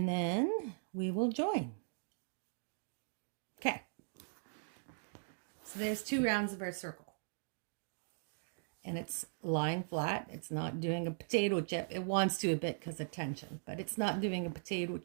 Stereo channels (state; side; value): silent; left; digital silence